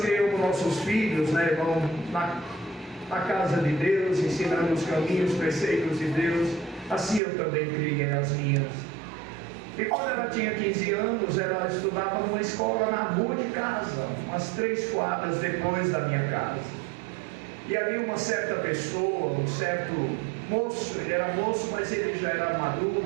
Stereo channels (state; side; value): drops out; left; at 7.2 s